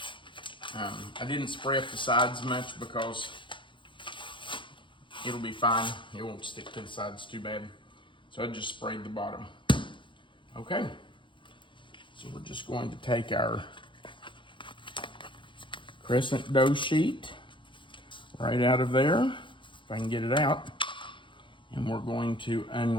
I didn't spray up the sides much because it'll be fine. It won't stick to the sides too bad. So I just sprayed the bottom. Okay. So we're just going to take our crescent dough sheet right out of there, if I can get it out. And we're going to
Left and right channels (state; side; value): late; right; 0.24 ms